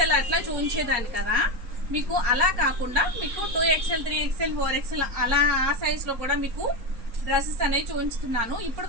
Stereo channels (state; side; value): late; left; 4.3 ms